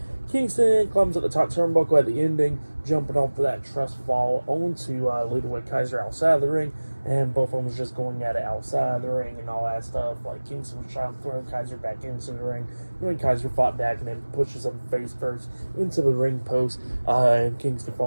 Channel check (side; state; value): both; inverted; correlation -1.00